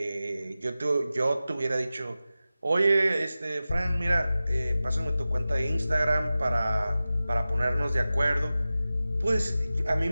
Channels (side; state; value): both; inverted; correlation -0.95